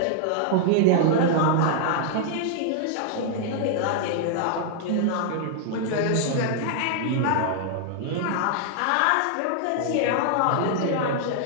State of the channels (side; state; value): both; different; correlation -0.01